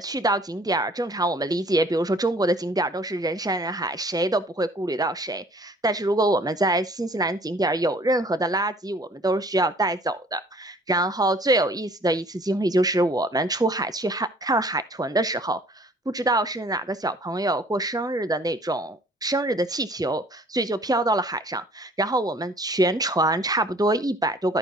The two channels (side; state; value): both; normal; correlation 0.54